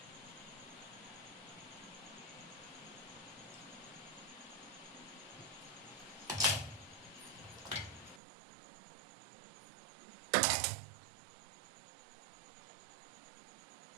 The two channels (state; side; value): drops out; left; at 8.2 s